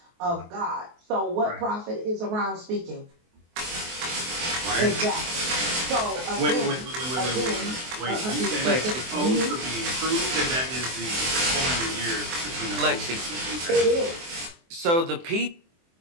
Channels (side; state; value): left; late; 23 ms